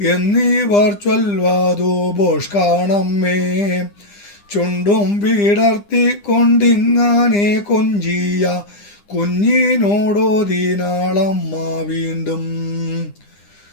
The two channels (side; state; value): right; late; 9.9 ms